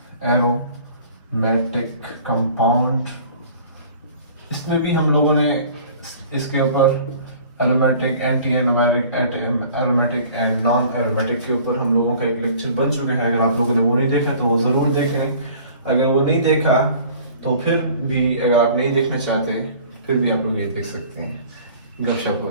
एरोमेटिक कंपाउंड, इसमें भी हम लोगों ने इसके ऊपर aromatic, anti aromatic and non aromatic के ऊपर हम लोगों का एक लेक्चर बन चुका है। अगर आप लोगों ने वो नहीं देखा तो वो ज़रूर देख लें। अगर वो नहीं देखा तो फिर भी, अगर आप नहीं देखना चाहते फिर भी आप लोग ये देख सकते हैं। गपशप हो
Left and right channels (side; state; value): both; inverted; correlation -0.49